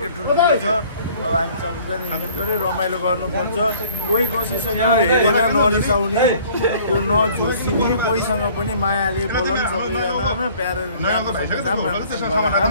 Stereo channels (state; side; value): inverted; both; correlation -0.54